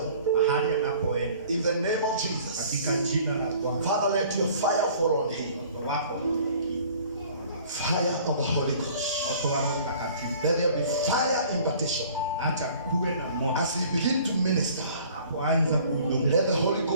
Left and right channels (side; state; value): both; inverted; correlation -0.51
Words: In the name of Jesus, Father, let your fire fall on him. Fire of the Holy Ghost. Let there be fire impartation. As he begin to minister, let the Holy